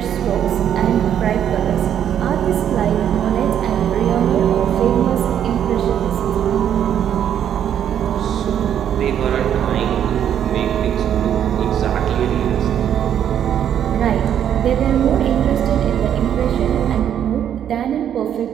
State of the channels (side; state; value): left; quieter; 9.6 dB